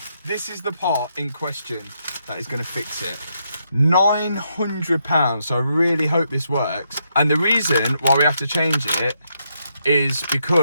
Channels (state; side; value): inverted; both; correlation -0.78